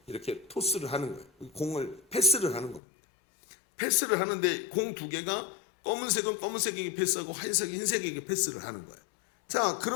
이렇게 토스를 하는 거예요. 공을 패스를 하는 겁니다. 패스를 하는데 공 2개가 검은색은 검은색에게 패스하고 흰색은 흰색에게 패스를 하는 거예요. 자,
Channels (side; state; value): right; drops out; at 2.8 s